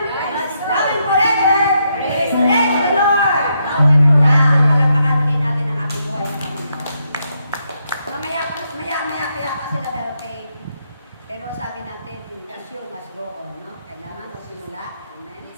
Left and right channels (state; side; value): inverted; both; correlation -0.79